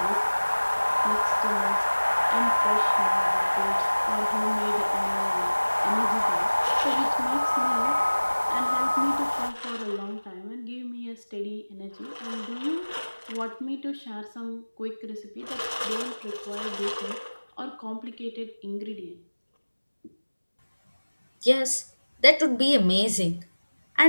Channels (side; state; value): both; inverted; correlation -1.00